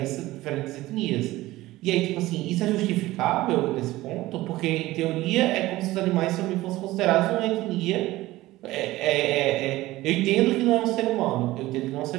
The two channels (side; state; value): left; quieter; 17.6 dB